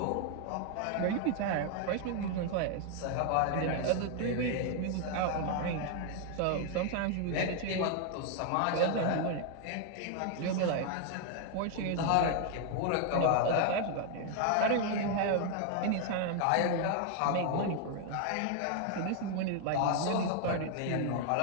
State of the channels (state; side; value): different; both; correlation 0.00